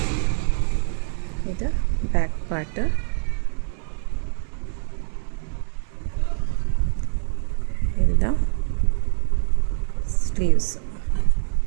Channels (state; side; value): silent; left; 56 dB below the other